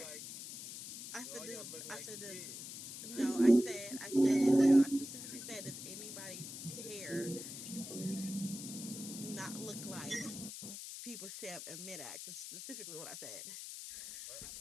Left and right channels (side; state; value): left; noise; hiss, 9 dB below the sound